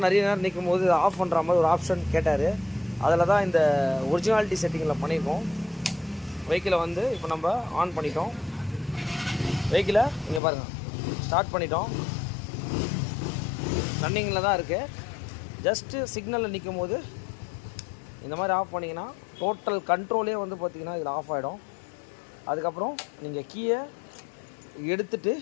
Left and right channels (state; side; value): drops out; right; at 10.4 s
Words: நிறைய நேரம் நிற்கும் போது ஆஃப் பண்ணுற மாதிரி ஒரு ஆப்ஷன் கேட்டார். அதில் தான் இந்த ஒரிஜினாலிட்டி செட்டிங்கில் பண்ணியிருக்கோம். வெஹிக்கிளை வந்து இப்போ நம்ம ஆன் பண்ணிட்டோம். வெஹிக்கிளை இங்கே பாருங்கள் ஸ்டார்ட் பண்ணிட்டோம். ரன்னிங்கில் தான் இருக்குது. ஜஸ்ட்டு சிக்னலில் நிற்கும் போது இந்த மாதிரி ஆஃப் பண்ணிங்கன்னா டோட்டல் கண்ட்ரோலே வந்து பார்த்திங்கன்னா இதில் ஆஃப் ஆகிடும். அதுக்கப்புறம் நீங்கள் கீயை எடுத்துட்டு